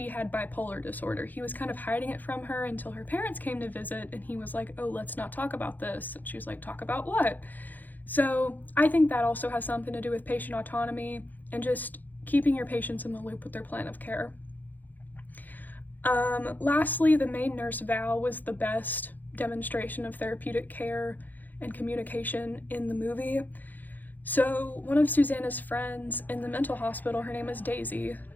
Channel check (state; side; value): late; right; 0.084 ms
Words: had bipolar disorder. He was kind of hiding it from her until her parents came to visit, and he was like, oh, let's not talk about this. And she was like, talk about what? So I think that also has something to do with patient autonomy and just keeping your patients in the loop with their plan of care. Lastly, the main nurse, Val, was the best demonstration of therapeutic care and communication in the movie. So one of Susanna's friends in the mental hospital, her name was Daisy,